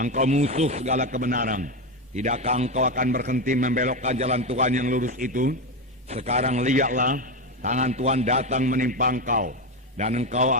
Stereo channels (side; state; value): both; normal; correlation 0.13